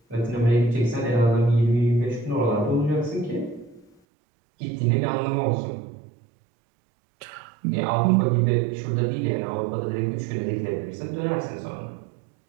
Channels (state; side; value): drops out; left; at 3.9 s